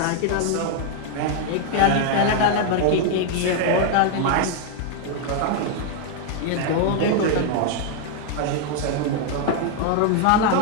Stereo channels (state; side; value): different; both; correlation 0.00